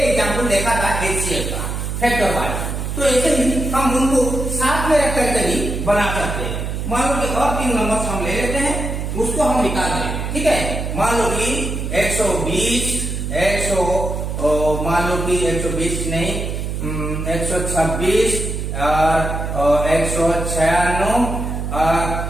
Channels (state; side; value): noise; right; hum, 4 dB below the sound